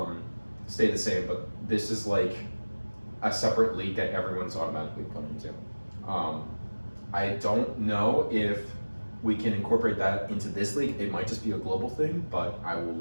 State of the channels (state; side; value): inverted; both; correlation -1.00